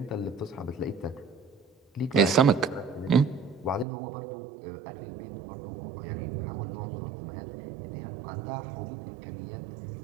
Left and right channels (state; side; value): drops out; left; at 3.9 s